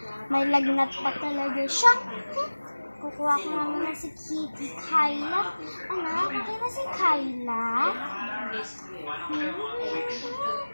May lagnat pa talaga siya. Kukuha ko namin na si Kitty Kyla. Anak, okay na si Kyla?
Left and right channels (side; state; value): both; inverted; correlation -1.00